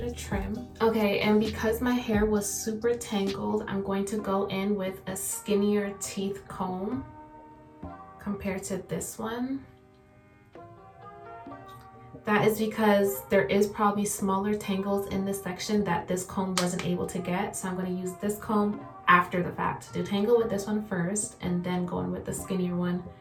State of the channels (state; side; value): identical; both; correlation 1.00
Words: a trim. Okay, and because my hair was super tangled, I'm going to go in with a skinnier teeth comb compared to this one. That is because there is probably smaller tangles in this section that this comb wasn't able to get. So I'm going to use this comb after the fact. Detangle with this one first and then go in with the skinnier one